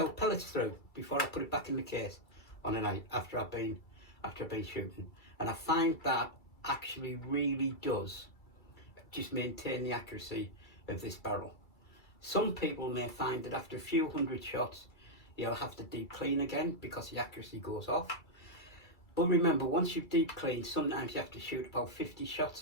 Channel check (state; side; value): late; right; 2.3 ms